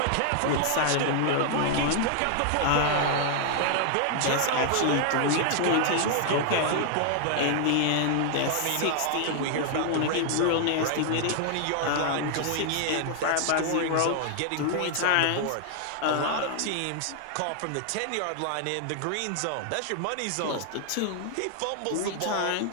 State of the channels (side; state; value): both; different; correlation 0.00